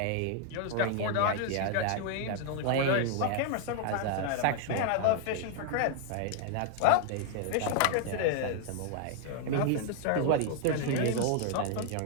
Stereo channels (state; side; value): different; both; correlation 0.00